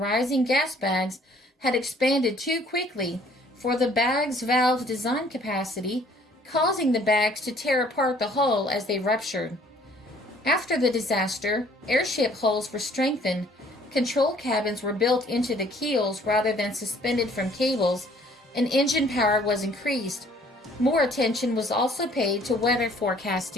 gas bags had expanded too quickly for the bag's valve design capacity, causing the bags to tear apart the hull as they ruptured. After the disaster, airship hulls were strengthened, control cabins were built into the keels rather than suspended from cables, and engine power was increased. More attention was also paid to weather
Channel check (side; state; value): both; normal; correlation 0.58